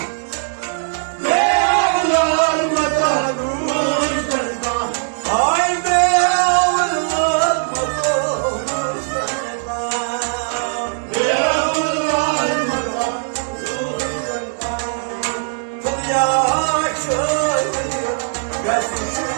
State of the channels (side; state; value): left; silent; digital silence